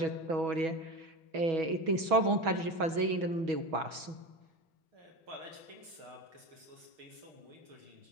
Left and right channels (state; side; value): late; left; 6.2 ms